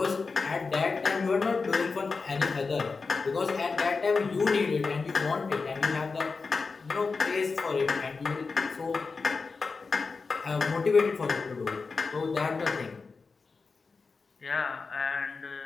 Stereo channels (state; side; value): quieter; right; 4.5 dB